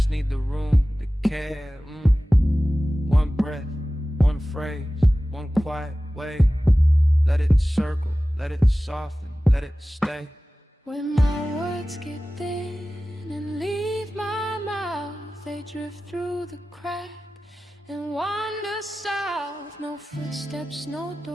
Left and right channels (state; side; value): normal; both; correlation 0.96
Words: need the room to care. One breath, one phrase, one quiet way. Let it circle, let it soften, let it stay. When my words get thin and leave my mouth, they drift through the crack and wander south. No footsteps, no